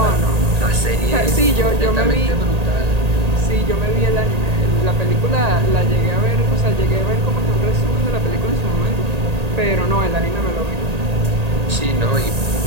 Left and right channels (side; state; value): left; late; 1.8 ms